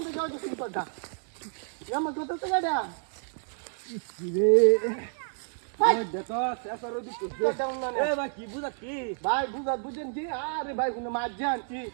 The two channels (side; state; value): left; silent; digital silence